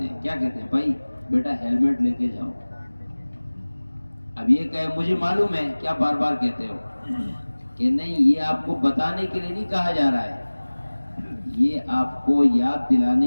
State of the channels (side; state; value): both; inverted; correlation -1.00